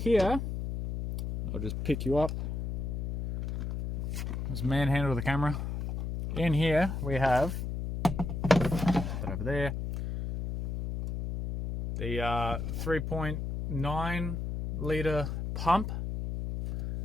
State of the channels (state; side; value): noise; left; hum, 3 dB below the sound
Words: I'll just pick you up. Just manhandle the camera. In here we have, over there, the 3.9 litre pump